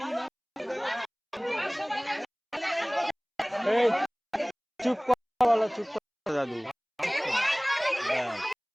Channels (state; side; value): identical; both; correlation 1.00